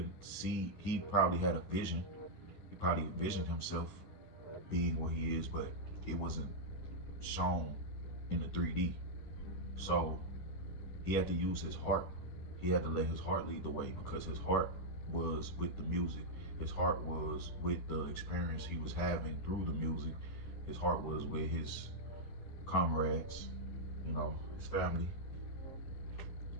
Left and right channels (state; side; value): late; right; 11 ms